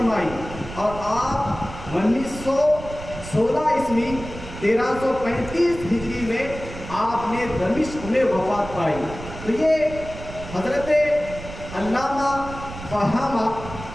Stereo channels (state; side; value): noise; right; rumble, 12 dB below the sound